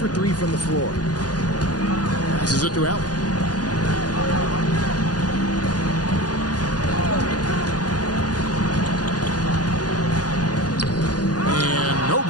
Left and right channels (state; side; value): late; right; 0.69 ms